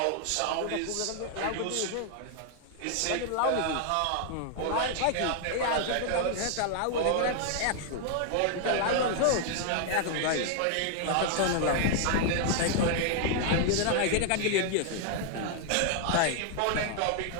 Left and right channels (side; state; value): both; different; correlation 0.00